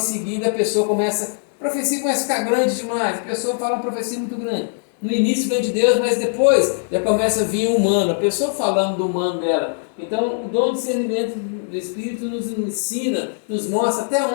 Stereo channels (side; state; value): right; silent; digital silence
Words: seguida a pessoa a profecia começa a ficar grande demais, a pessoa fala uma profecia muito grande. No início vem de Deus, mas depois já começa a vir o humano, a pessoa falando do humano dela. Então o dom de discernimento do Espírito nos ensina, nos mostra até